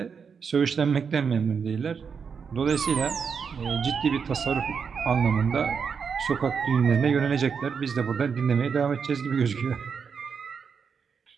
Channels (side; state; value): left; quieter; 6.2 dB